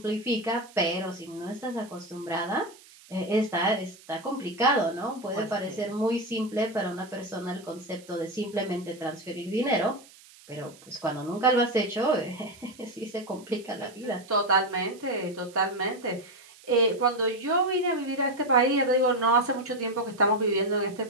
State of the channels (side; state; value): right; noise; hiss, 23 dB below the sound